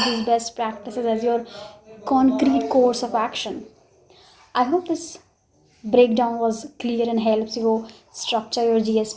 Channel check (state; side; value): identical; both; correlation 1.00